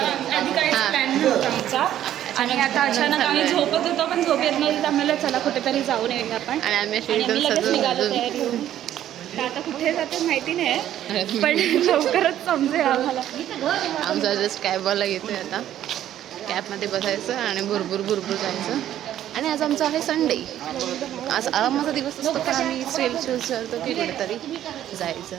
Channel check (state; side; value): quieter; left; 11.7 dB